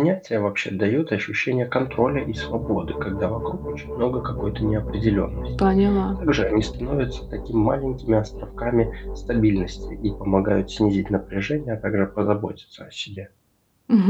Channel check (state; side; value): identical; both; correlation 1.00